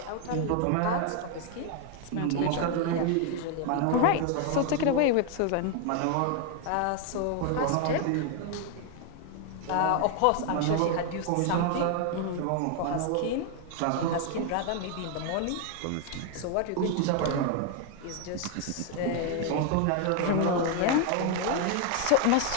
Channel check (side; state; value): both; different; correlation 0.00